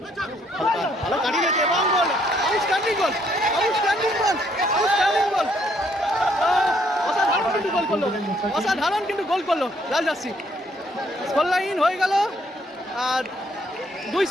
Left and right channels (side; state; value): both; normal; correlation 0.68